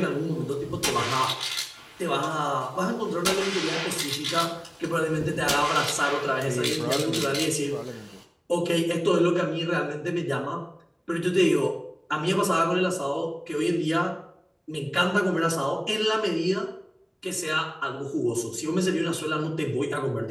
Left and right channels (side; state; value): both; identical; correlation 1.00